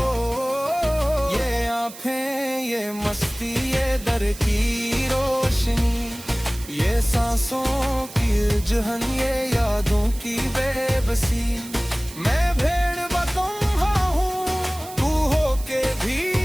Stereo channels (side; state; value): right; noise; hiss, 16 dB below the sound